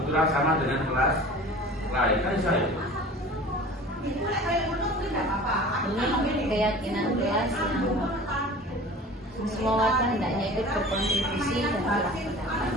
sama dengan kelas lain kan saya. Ini keyakinan kelas yang semua warga hendaknya ikut berkontribusi dan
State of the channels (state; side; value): normal; both; correlation 0.41